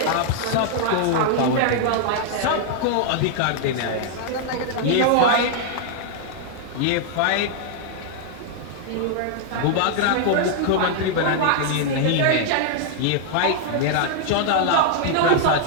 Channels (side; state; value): both; different; correlation 0.00